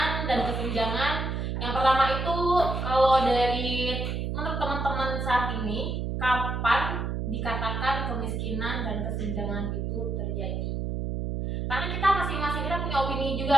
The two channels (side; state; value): right; noise; hum, 2 dB below the sound